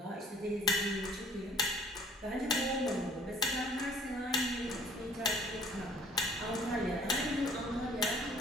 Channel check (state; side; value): normal; both; correlation 0.55